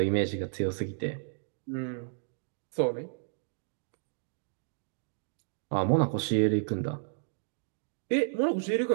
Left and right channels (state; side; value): silent; left; digital silence